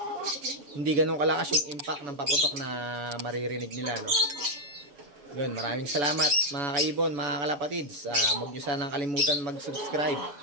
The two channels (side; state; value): left; late; 7.0 ms